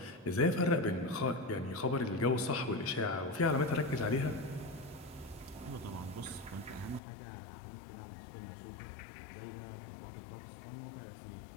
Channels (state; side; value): drops out; right; at 7.0 s